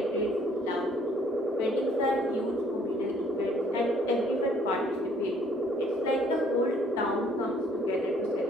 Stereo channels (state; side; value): normal; both; correlation 0.61